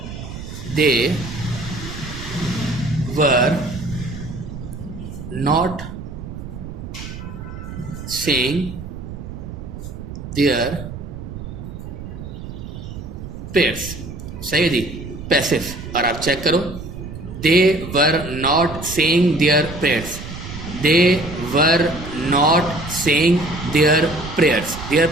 they were not saying their prayers. सही है जी, पैसिव। और आप चेक करो, they were not saying their prayers, they were not saying their prayers. Their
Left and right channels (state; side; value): noise; right; rumble, 10 dB below the sound